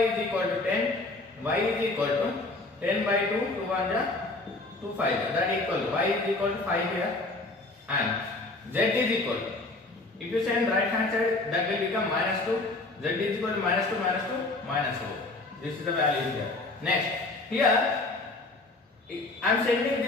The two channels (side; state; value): right; quieter; 3.1 dB